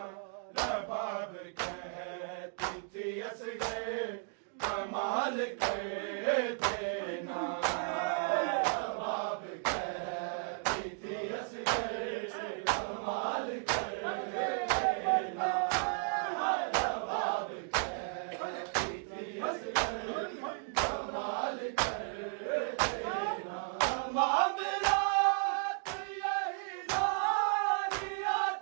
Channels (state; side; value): silent; left; 55 dB below the other